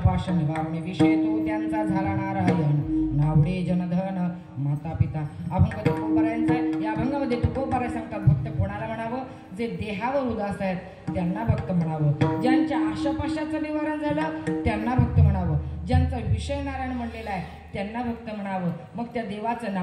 निवारणे विषय तो त्यांचा झाला नारायण नावडे जनधन माता पिता. अभंग तुकोबारायांचा आहे. या अभंगामध्ये तुकोबाराय सांगतात भक्त कोणाला म्हणावं? जे देहावर उदास आहेत त्यांना भक्त म्हणावं. ज्यांच्या आशापाशाचं निवारण झालं त्यांना भक्त म्हणावं. ज्यांचा विषय नारायण म्हणलेला आहे त्यांना भक्त म्हणावं. मग त्या देवाचं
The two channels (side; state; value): both; identical; correlation 1.00